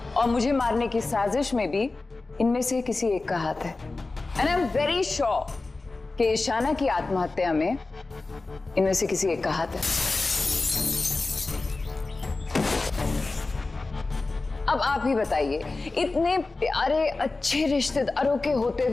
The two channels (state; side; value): quieter; right; 3.4 dB